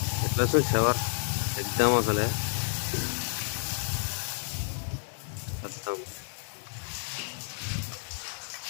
ఎట్లా వస్తుంది షవర్ ఎగ్దాం అసలే అర్థం.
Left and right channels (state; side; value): silent; right; digital silence